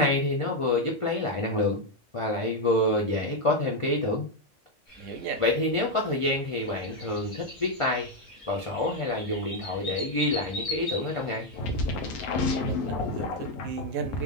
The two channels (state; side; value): normal; both; correlation 0.03